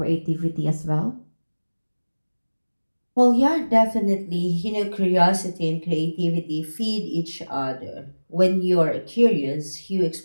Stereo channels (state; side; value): inverted; both; correlation -1.00